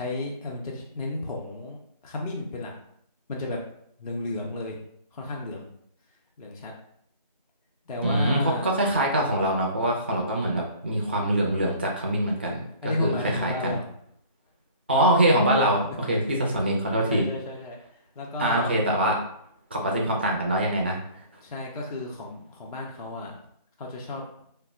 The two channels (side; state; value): both; inverted; correlation -0.48